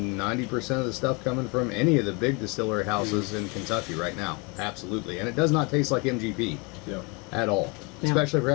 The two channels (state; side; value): quieter; right; 30.0 dB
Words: 90% of the stuff coming from any of the big distillery houses in Kentucky right now. Absolutely. And it does not taste like MGP at all, No. especially if we're